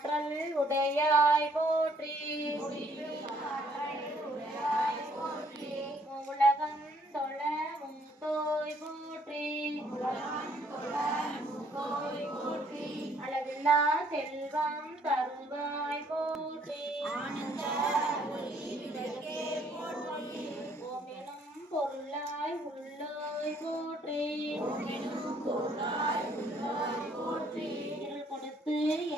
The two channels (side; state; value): both; normal; correlation 0.65